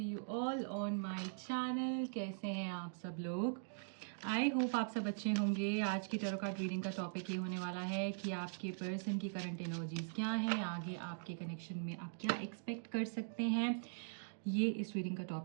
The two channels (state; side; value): silent; left; digital silence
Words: all on my channel. कैसे हैं आप सब लोग? आई होप आप सब अच्छे होंगे। आज की टैरो कार्ड रीडिंग का टॉपिक ये होने वाला है कि आपके पर्सन की करंट एनर्जीज क्या है, आगे आपके कनेक्शन में आप क्या एक्सपेक्ट कर सकते हैं। ये इस रीडिंग का